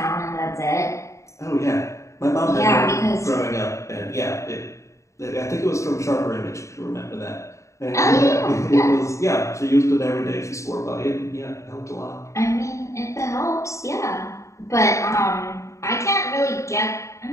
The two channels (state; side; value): late; right; 0.14 ms